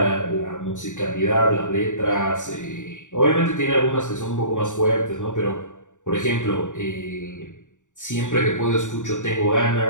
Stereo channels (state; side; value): late; right; 0.86 ms